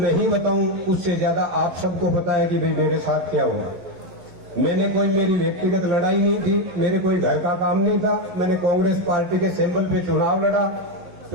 बताऊं, उससे ज्यादा आप सबको पता है कि भाई मेरे साथ क्या हुआ। मैंने कोई मेरी व्यक्तिगत लड़ाई नहीं थी, मेरे कोई घर का काम नहीं था। मैंने कांग्रेस पार्टी के सिंबल पे चुनाव लड़ा,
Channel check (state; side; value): late; left; 11 ms